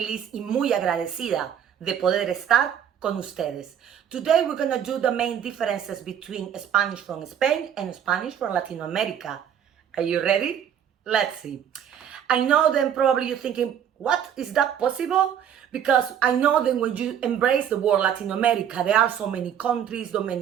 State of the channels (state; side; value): quieter; left; 9.1 dB